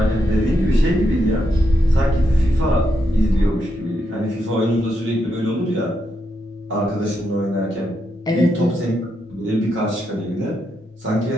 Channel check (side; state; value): both; normal; correlation 0.81